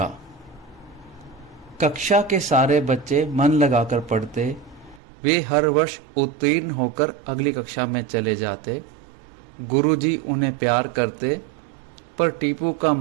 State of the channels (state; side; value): drops out; left; at 5.0 s